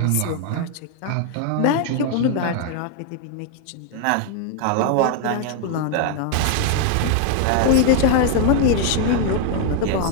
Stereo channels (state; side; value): different; both; correlation 0.00